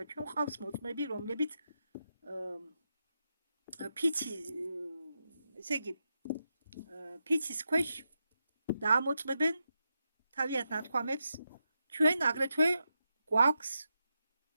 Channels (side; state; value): both; inverted; correlation -0.87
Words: ჩვენ ყავს მოწმეები, რომლებიც ფიცის ქვეშ დაამოწმებენ თავიანთ ნათქვამებს. ჩვენ აგრეთვე გვაქვს